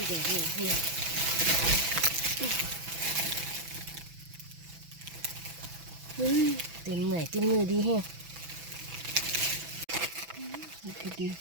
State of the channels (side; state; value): left; late; 6.0 ms